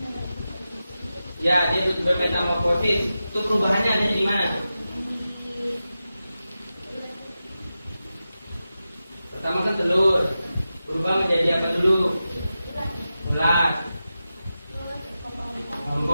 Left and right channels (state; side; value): inverted; both; correlation -0.92